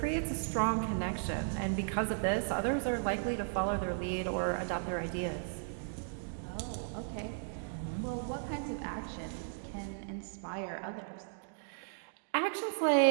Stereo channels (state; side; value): silent; left; digital silence